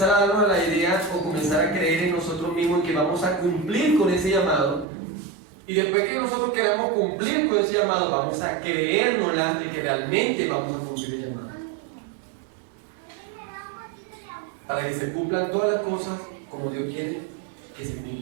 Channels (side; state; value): left; drops out; at 4.9 s